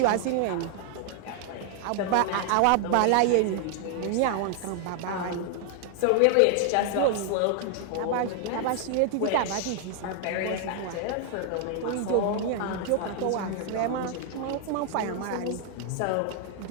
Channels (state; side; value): different; both; correlation 0.00